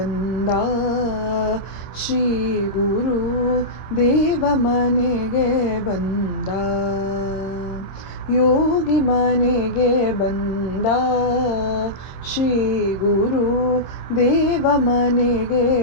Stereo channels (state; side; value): late; right; 26 ms